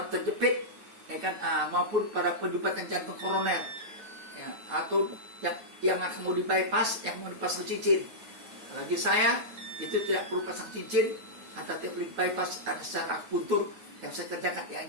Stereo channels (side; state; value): left; late; 9.8 ms